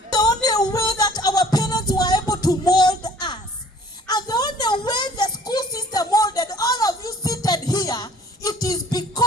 The only way that our parents were able to mold us, and the only way the school system molded all of you seated here, it is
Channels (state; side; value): normal; both; correlation 0.52